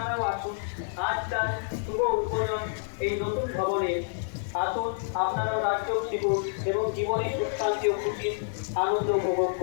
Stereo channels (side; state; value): right; silent; digital silence